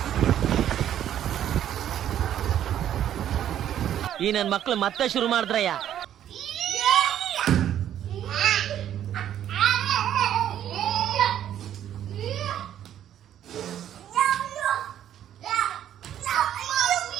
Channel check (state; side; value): quieter; left; 10.8 dB